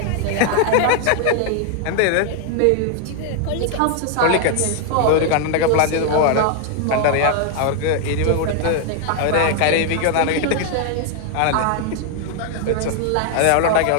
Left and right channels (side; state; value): both; different; correlation 0.00